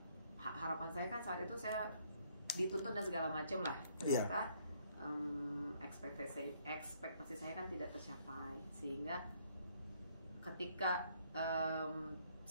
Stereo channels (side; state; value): both; inverted; correlation -0.67